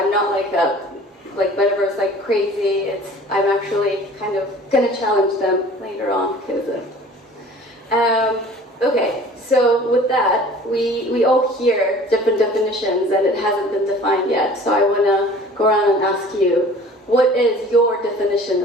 not like Metaverse like crazy. I'm actually kind of gonna challenge them later on because okay, so with that, we all hear different definitions and it hasn't been defined yet. So I want to go around and ask you, what is your definition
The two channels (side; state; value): both; normal; correlation 0.47